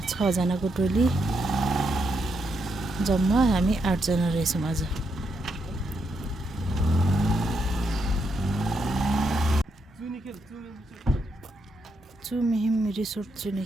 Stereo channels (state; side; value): normal; both; correlation 0.80